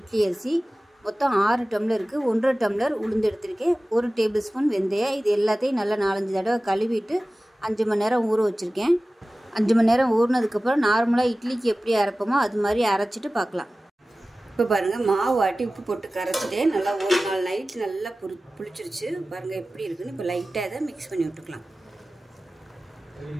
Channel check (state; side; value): normal; both; correlation 0.97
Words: அரிசி, மொத்தம் 6 டம்ளருக்கு 1.5 டம்ளர் உளுந்து எடுத்திருக்கேன். 1 டேபிள் ஸ்பூன் வெந்தயம். இது எல்லாத்தையும் நல்லா 4-5 தடவை கழுவிட்டு 5 மணி நேரம் ஊற வச்சுருக்கேன். 5 மணி நேரம் ஊறினதுக்கப்புறம் நார்மலாக இட்லிக்கு எப்படி அரைப்போமோ அது மாதிரி அரைச்சிட்டு பார்க்கலாம். இப்போ பாருங்கள், மாவு ஆட்டி உப்பு போட்டு கரைச்சிட்டேன். நல்லா ஒரு நாள் நைட் நல்லா புளிச்சிருச்சு. பாருங்கள் எப்படி இருக்குன்னு. இப்போ லைட்டாக இதை மிக்ஸ் பண்ணி விட்டுக்கலாம்.